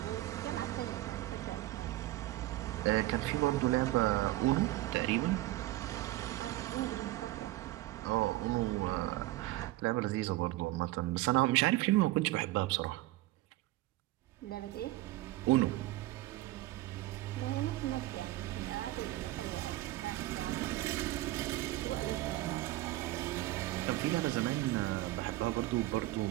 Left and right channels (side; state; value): left; quieter; 17.2 dB